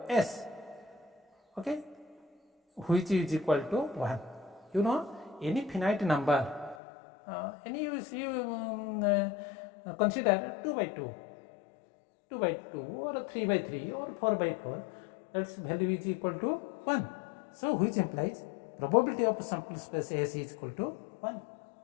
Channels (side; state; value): right; drops out; at 6.8 s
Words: S, okay, which is equal to 1. You know, any finite number, consider 2 by 2, 2 by 2 or 3 by 3 or 4 by 4, that's value is equal to 1. So which implies probability of sample space S is equal to 1.